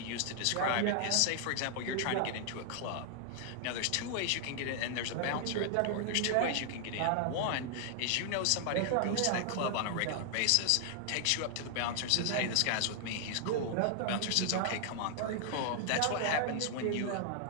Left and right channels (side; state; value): both; different; correlation 0.00